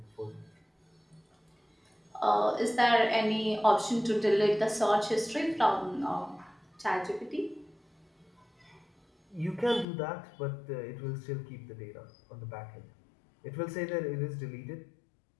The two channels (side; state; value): right; drops out; at 9.9 s